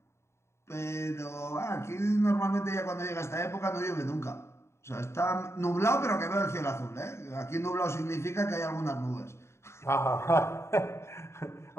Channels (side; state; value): right; late; 0.13 ms